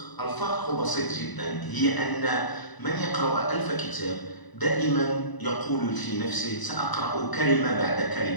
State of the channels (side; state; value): right; late; 1.0 ms